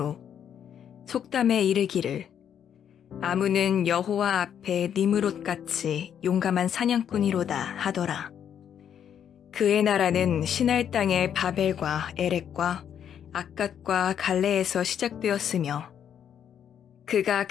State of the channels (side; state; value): right; quieter; 8.9 dB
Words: 속담에 이르기를 아무는 여호와 앞에 니므롯같이 용감한 사냥꾼이로다 하더라. 그의 나라는 시날 땅의 바벨과 에렉과 악갓과 갈레에서 시작되었으며, 그가